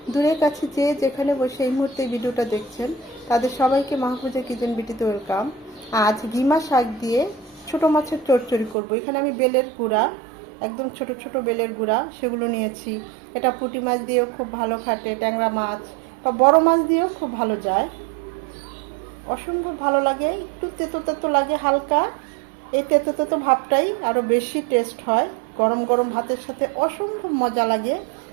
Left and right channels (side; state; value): left; drops out; at 8.8 s